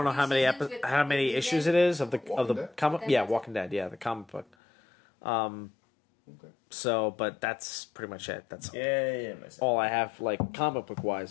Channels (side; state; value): right; drops out; at 4.5 s